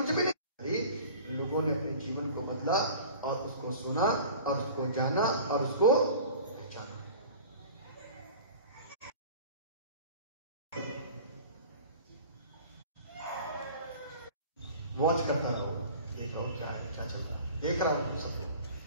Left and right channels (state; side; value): inverted; both; correlation -0.42